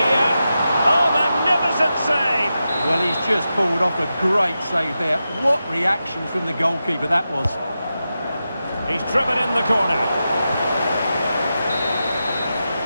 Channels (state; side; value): inverted; both; correlation -0.90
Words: Oh, magnificent save! Well, he's just pulled off a great save there. What reaction from the goalkeeper that was. He's driven in the corner.